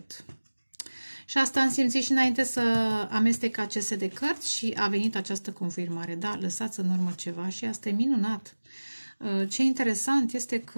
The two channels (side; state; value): both; inverted; correlation -1.00